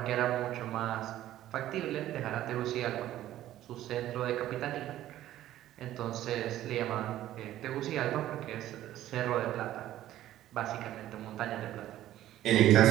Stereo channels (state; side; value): quieter; left; 13.5 dB